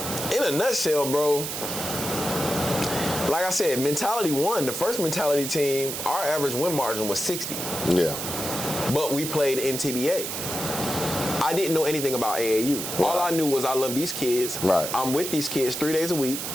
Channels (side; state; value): right; noise; hiss, 5 dB below the sound